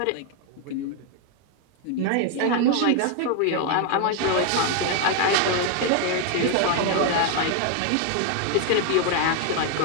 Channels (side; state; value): both; different; correlation 0.01